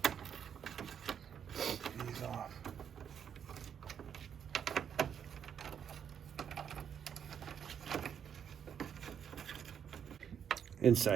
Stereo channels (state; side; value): quieter; left; 8.2 dB